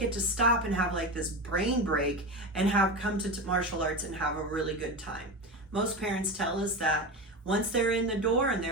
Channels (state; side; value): normal; both; correlation 0.22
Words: to stop and have like this brain break and have come to martial arts and have a really good time. Most parents tell us that once they're in the door and